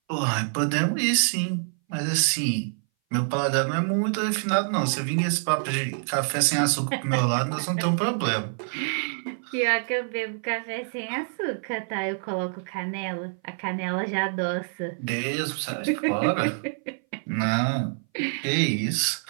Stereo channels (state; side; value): silent; left; 59 dB below the other